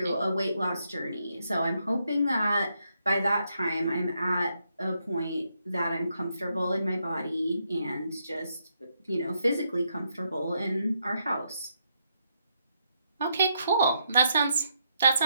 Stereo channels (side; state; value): both; inverted; correlation -0.78